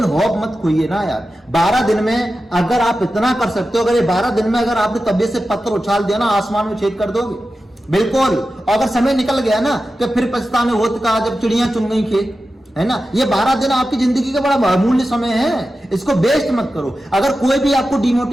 होप मत खोइए ना यार। 12 दिन में अगर आप इतना कर सकते हो, अगर ये 12 दिन में अगर आपने तबीयत से पत्थर उछाल दिया ना, आसमान में छेद कर दोगे बिल्कुल। अगर समय निकल गया ना तो फिर पछताने होत का जब चिड़ियां चुन गई खेत, है ना। ये 12 दिन आपकी जिंदगी का बड़ा बहुमूल्य समय है, इसको वेस्ट मत करो। अगर कोई भी आपको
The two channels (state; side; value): normal; both; correlation 0.93